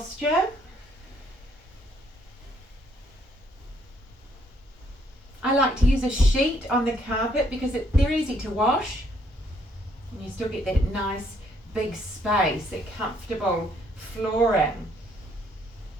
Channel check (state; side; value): normal; both; correlation 0.68